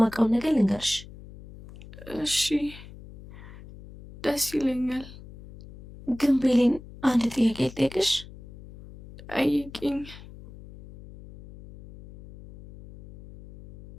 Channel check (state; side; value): noise; left; hum, 18 dB below the sound